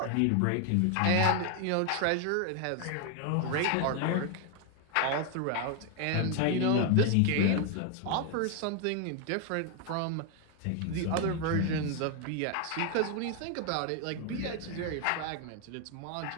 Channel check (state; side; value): different; both; correlation 0.01